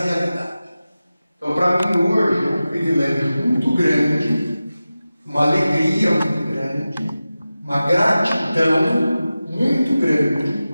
realidade. Então, para mim, hoje, é um privilégio muito grande, uma alegria muito grande, uma gratidão muito grande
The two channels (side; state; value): both; inverted; correlation -0.95